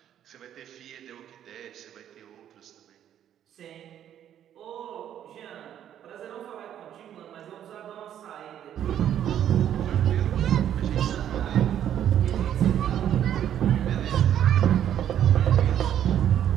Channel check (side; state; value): left; quieter; 10.4 dB